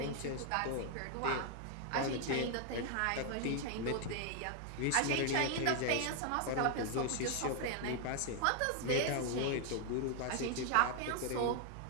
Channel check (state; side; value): different; both; correlation 0.00